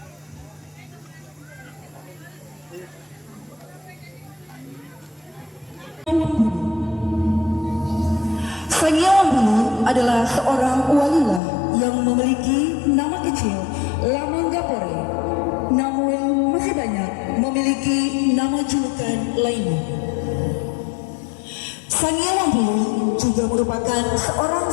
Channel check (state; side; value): drops out; right; at 11.4 s